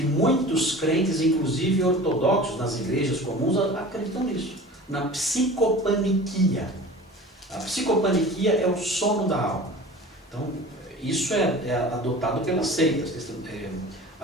muitos crentes, inclusive ortodoxos nas igrejas comuns, acreditam nisso, na psicopaniquia. A psicopaniquia é o sono da alma. Então isso é adotado pelas seitas.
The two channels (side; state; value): both; normal; correlation 0.39